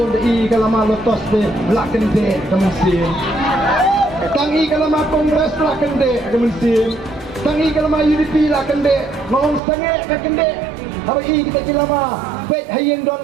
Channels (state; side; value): drops out; left; at 9.6 s